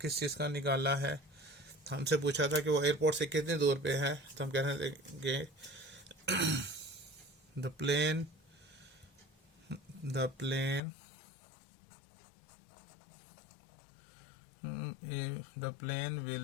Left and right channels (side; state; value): right; drops out; at 10.8 s